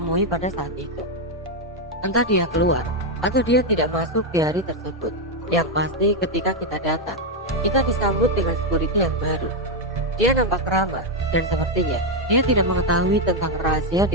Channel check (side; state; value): both; normal; correlation 0.03